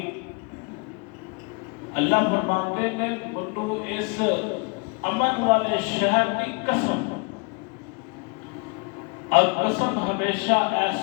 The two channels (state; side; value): quieter; right; 31.8 dB